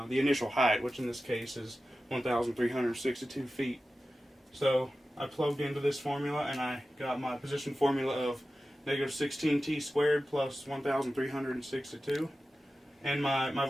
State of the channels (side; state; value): both; normal; correlation 0.94